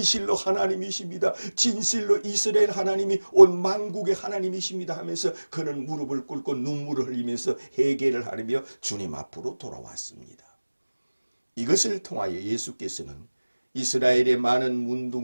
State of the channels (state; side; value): inverted; both; correlation -1.00